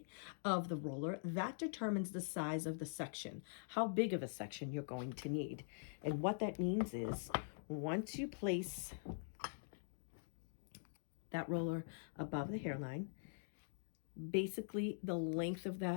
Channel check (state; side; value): silent; right; digital silence